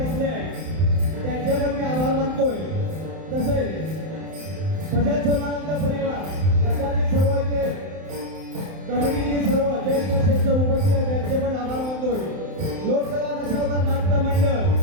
बसले आहेत त्यांचे पण मी आभार मानतोय. तसेच भजन सोनानंद परिवार याच्यातील सर्व इथे कमिटीतील सर्व ज्येष्ठ श्रेष्ठ उपस्थित आहेत त्यांचे पण आभार मानतोय. लोकसभा दशावतार नाट्य मंडळ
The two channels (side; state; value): left; late; 31 ms